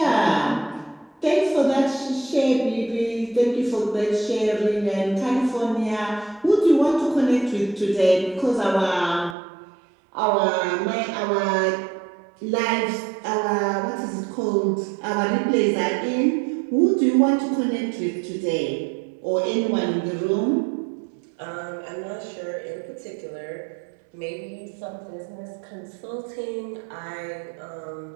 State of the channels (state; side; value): drops out; left; at 9.3 s